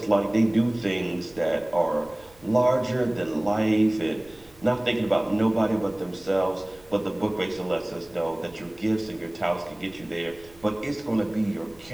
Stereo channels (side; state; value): right; noise; rumble, 26 dB below the sound